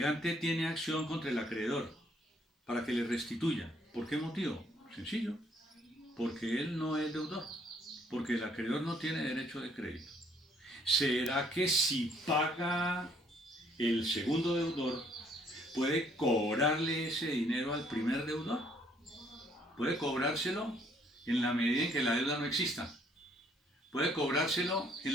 tiene acción contra el acreedor para que le restituya. ¿Por qué motivo? Sencillo, porque él no es deudor, porque el acreedor no tiene derecho de crédito. ¿Será que si paga el segundo deudor, puede cobrarle ese dinero al primer deudor? Puede cobrárselo en la medida en que la deuda no exista. Puede cobrárselo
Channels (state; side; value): normal; both; correlation 0.65